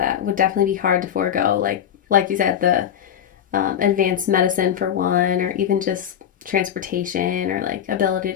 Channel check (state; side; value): quieter; right; 9.4 dB